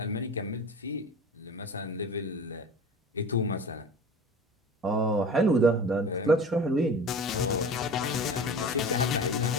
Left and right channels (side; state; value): both; normal; correlation 0.36